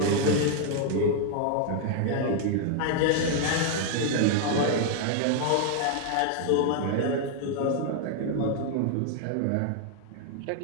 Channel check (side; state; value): both; different; correlation 0.00